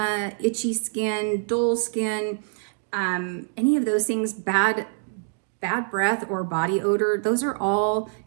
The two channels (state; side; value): silent; left; digital silence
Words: itchy skin, dull skin, any of those things, bad breath or body odor, those are all